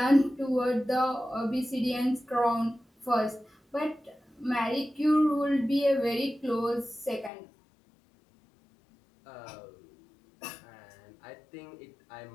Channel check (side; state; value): right; drops out; at 7.3 s